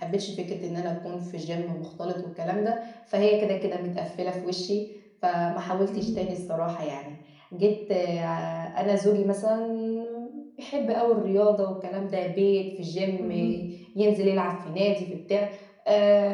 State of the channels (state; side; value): identical; both; correlation 1.00